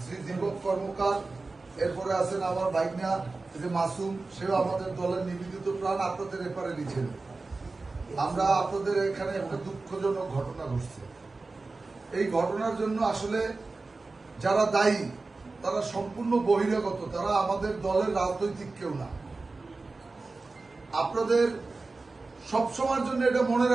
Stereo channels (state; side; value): quieter; left; 3.6 dB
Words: শ্রী দীপক কর্মকার, এরপরে আছেন আমার ভাইগনা যে মাসুম, সেও আমাদের দলের নিবেদিত প্রাণ, আপনাদের এপারে লিখেন। আমরা আপনাদের এখানে একটা দুঃখজনক ঘটনা ঘটছে। এই ঘটনার জন্য আসলে যারা দায়ী তারা সম্পূর্ণ বহিরাগত, তারা আমাদের দলের রাজনৈতিক কেউ না। আপনাদের সবসময়ের জন্য এটা মনে